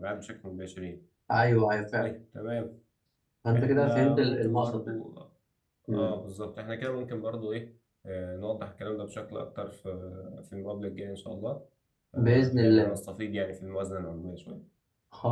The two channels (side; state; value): both; identical; correlation 1.00